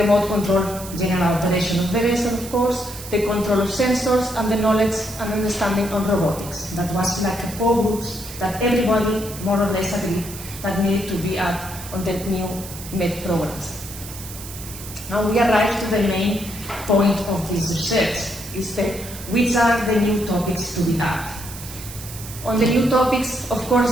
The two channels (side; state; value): right; noise; hiss, 13 dB below the sound